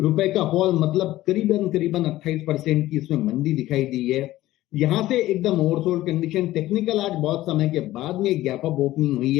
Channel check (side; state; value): right; quieter; 15.8 dB